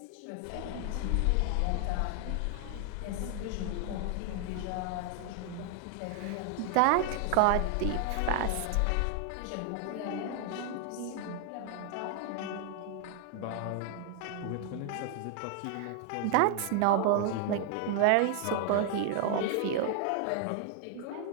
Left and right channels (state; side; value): different; both; correlation 0.00